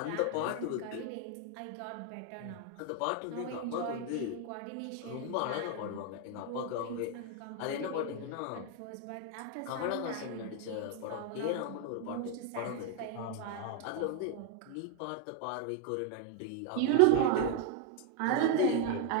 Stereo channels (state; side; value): different; both; correlation 0.01